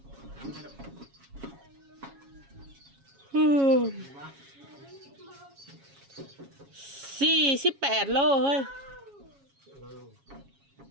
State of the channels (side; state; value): left; late; 7.3 ms